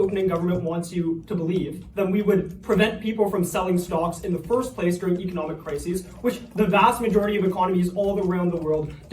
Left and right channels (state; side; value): identical; both; correlation 1.00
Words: government wants you to believe, then we would prevent people from selling stocks in the first place during economic crises, which the vast majority of economies all around the world